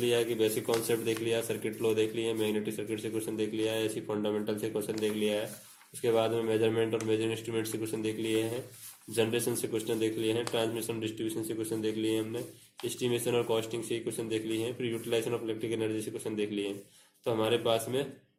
है कि बेसिक कॉन्सेप्ट देख लिया, सर्किट लॉ देख लिया, मैग्नेटिक सर्किट से क्वेश्चन देख लिया है, ऐसी फंडामेंटल से क्वेश्चन देख लिया है। उसके बाद में मेजरमेंट और मेजर इंस्ट्रूमेंट से क्वेश्चन देख लिए हैं, जनरेशन से क्वेश्चन देख लिए हैं, ट्रांसमिशन डिस्ट्रीब्यूशन से क्वेश्चन देख लिए हैं हमने, एस्टिमेशन और कॉस्टिंग से क्वेश्चन देख लिए हैं, फिर यूटिलाइजेशन ऑफ इलेक्ट्रिक एनर्जी से क्वेश्चन देख लिए हैं। तो हमारे पास में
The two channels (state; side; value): identical; both; correlation 1.00